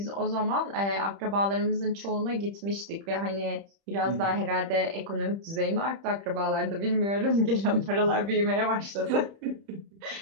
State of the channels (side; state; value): left; late; 30 ms